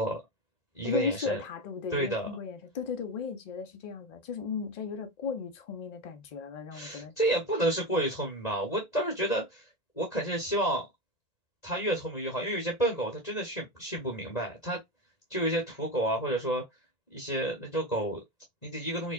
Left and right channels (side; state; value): right; late; 1.9 ms